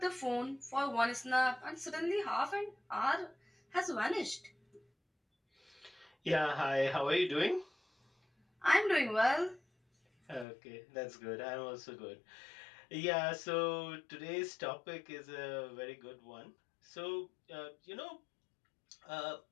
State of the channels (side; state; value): right; drops out; at 10.5 s